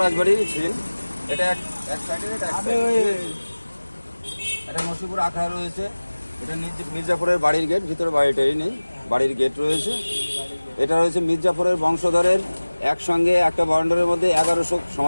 রাজবাড়ির ছিল। এটা এক সাইডে, এটা এক সাইডে। এটা নসিপুর আখড়া রয়েছে। এটা মির্জাপুরের বাড়ির গেট, ভিতরে বাড়িটাই নেই, বাড়ির গেট রয়েছে। এটা রয়েছে মির্জাপুরের বংশধরের একসঙ্গে একটা বাউন্ডারির মধ্যে 1100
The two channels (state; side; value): inverted; both; correlation -1.00